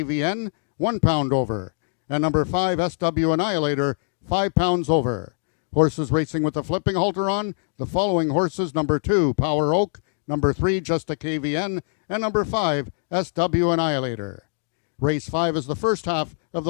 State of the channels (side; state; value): right; silent; digital silence